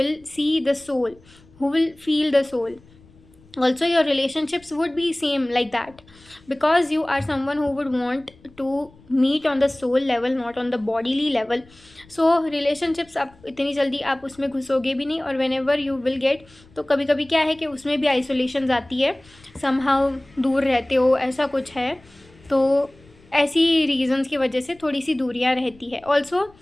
see the soul, who will feel the soul. Also your relationships would be same like that, because you are someone who would want to meet on the soul level, not on the bodily level. So relationships आप इतनी जल्दी आप उसमें घुसोगे भी नहीं, और whenever you will get, तो कभी कभी क्या है कि उसमें भी आइसोलेशन आती है, somehow दूर रहते हो, ऐसा कुछ है। तो ऐसी रीजंस की वजह से थोड़ी सी दूरियां रहती है। ऑल्सो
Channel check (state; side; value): noise; left; rumble, 27 dB below the sound